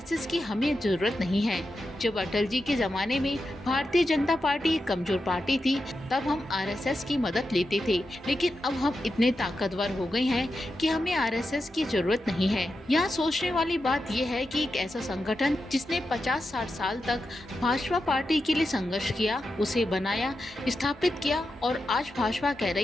की हमें जरूरत नहीं है। जब अटल जी के जमाने में भारतीय जनता पार्टी एक कमजोर पार्टी थी, तब हम आरएसएस की मदद लेते थे, लेकिन अब हम इतने ताकतवर हो गए हैं कि हमें आरएसएस की जरूरत नहीं है। यहाँ सोचने वाली बात यह है कि एक ऐसा संगठन जिसने 50-60 साल तक भाजपा पार्टी के लिए संघर्ष किया, उसे बनाया, स्थापित किया, और आज भाजपा कह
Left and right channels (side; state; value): both; normal; correlation 0.89